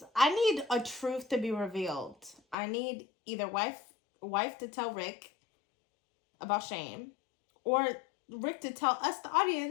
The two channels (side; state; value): right; drops out; at 2.6 s